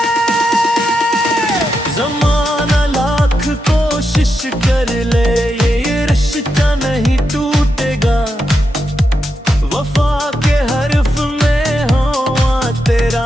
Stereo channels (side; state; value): both; normal; correlation 0.85